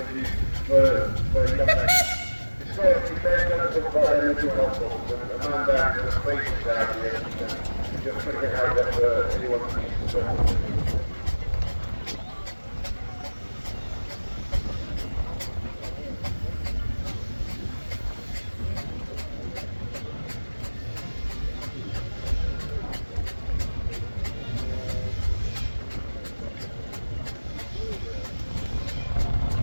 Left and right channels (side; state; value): both; inverted; correlation -1.00